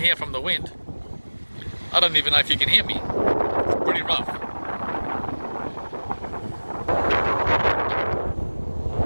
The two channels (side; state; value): both; inverted; correlation -1.00